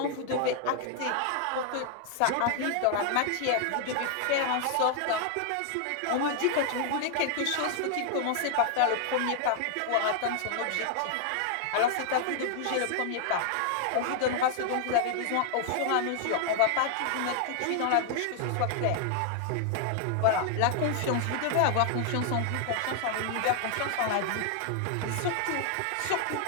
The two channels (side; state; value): both; different; correlation 0.00